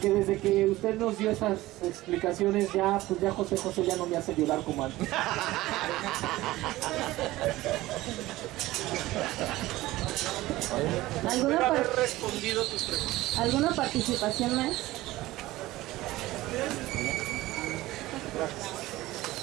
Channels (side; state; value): left; quieter; 17.5 dB